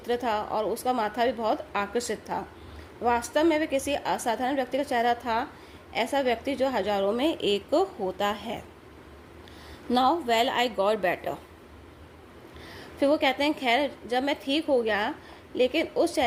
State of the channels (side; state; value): both; identical; correlation 1.00